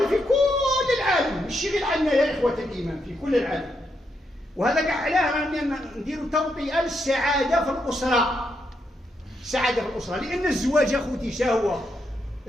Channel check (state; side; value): normal; both; correlation 0.81